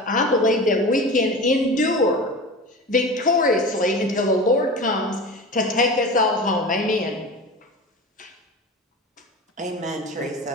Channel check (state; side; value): normal; both; correlation 0.31